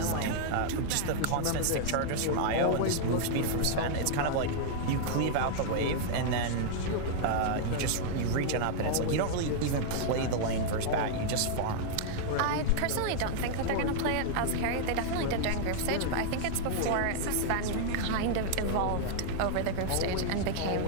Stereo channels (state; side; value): different; both; correlation -0.01